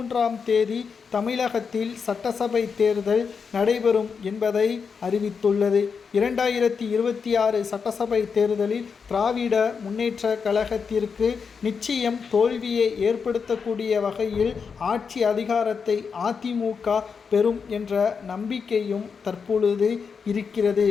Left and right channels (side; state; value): right; quieter; 5.8 dB